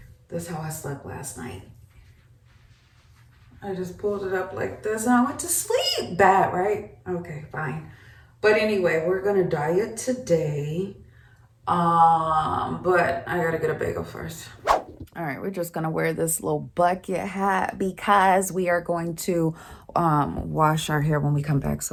This is how I slept last night. I just pulled it up like this and I went to sleep. Bad, right? Okay, fine. But anyway, we're gonna diet today. But I gotta get a bagel first. All right, we're just gonna wear this little bucket hat because we are going to wash our hair when we come back,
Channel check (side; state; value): both; identical; correlation 1.00